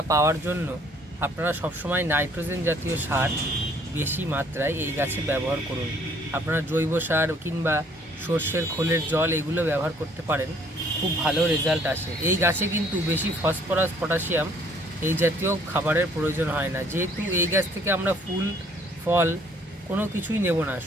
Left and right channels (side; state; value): both; normal; correlation 0.61